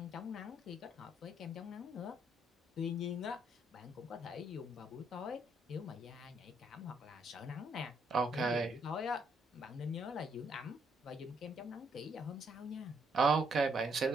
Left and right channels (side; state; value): both; normal; correlation 0.72